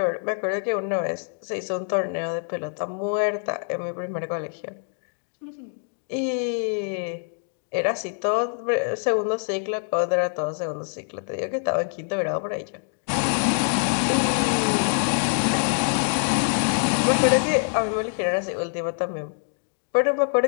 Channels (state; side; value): silent; right; 62 dB below the other